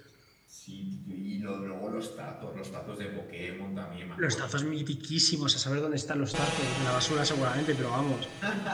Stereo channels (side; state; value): both; identical; correlation 1.00